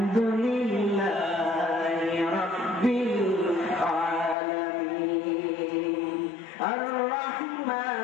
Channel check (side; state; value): right; drops out; at 4.4 s